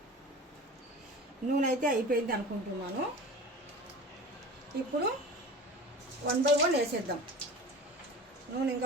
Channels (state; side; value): normal; both; correlation 0.35